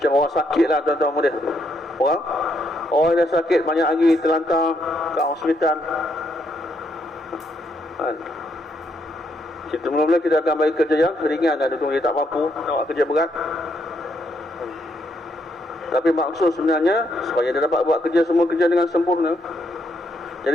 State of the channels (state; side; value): normal; both; correlation 0.75